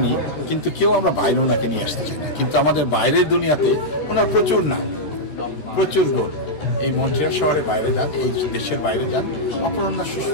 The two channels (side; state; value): right; late; 14 ms